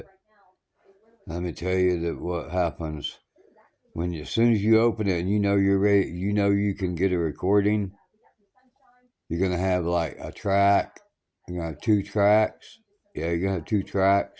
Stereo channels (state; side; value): identical; both; correlation 1.00